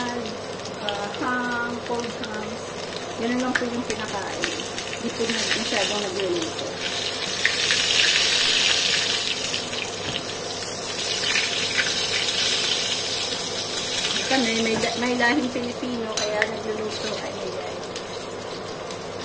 ham, cold hams. Ganun lang po yung pinakain. Hindi po masyadong nagluluto. Kami, may lahing Pilipino, kaya nagluluto. Ay, ay.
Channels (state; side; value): identical; both; correlation 1.00